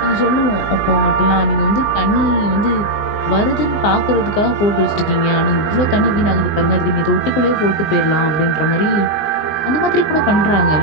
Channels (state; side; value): late; right; 20 ms